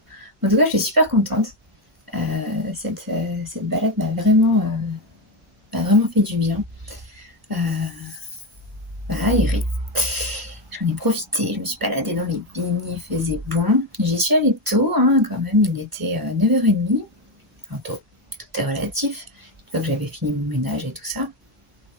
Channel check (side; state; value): both; normal; correlation 0.10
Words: En tout cas, je suis super contente. Cette balade m'a vraiment fait du bien. Voilà, Eric. J'en ai profité, je me suis baladée dans les vignes, il faisait bon. J'y suis allée tôt, hein, quand même, il était 9h30. Enfin tôt, tout est relatif. Une fois que j'avais fini mon ménage et tout ça.